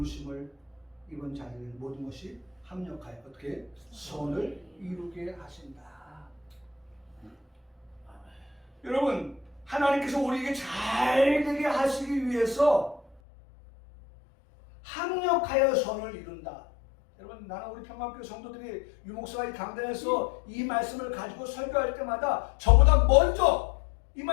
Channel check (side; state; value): right; drops out; at 13.2 s